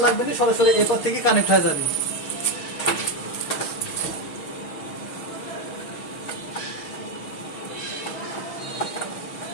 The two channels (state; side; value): late; right; 6.4 ms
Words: লাগবে না, সরাসরি এরপর থেকে কানেক্ট হয়ে যাবে।